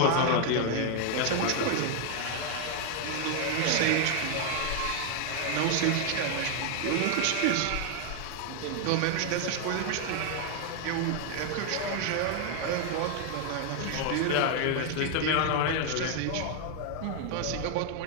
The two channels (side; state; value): both; different; correlation 0.00